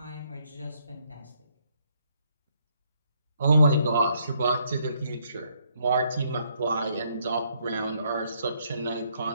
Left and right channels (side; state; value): both; inverted; correlation -0.71